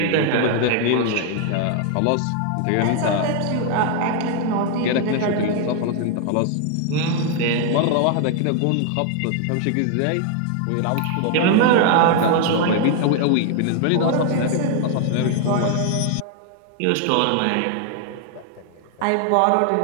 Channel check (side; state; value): both; different; correlation 0.00